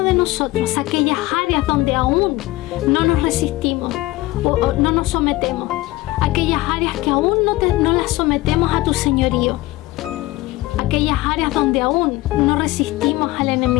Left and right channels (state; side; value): quieter; right; 18.7 dB